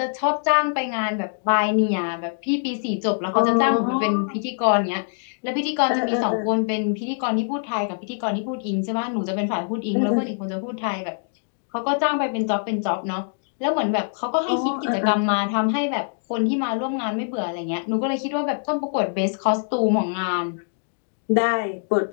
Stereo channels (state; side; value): silent; right; digital silence